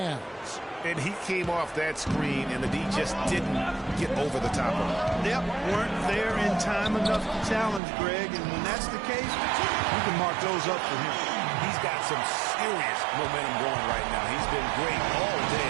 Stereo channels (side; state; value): left; drops out; at 7.8 s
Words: And he came off that screen, and the D just didn't get over the top of him. Yep, weren't there in time enough to challenge Greg, and when that's the case, you can mark those up for him. He's got some serious momentum going right now. He's been great all